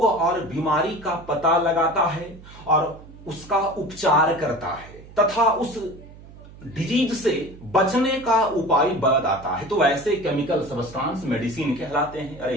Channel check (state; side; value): noise; right; hum, 19 dB below the sound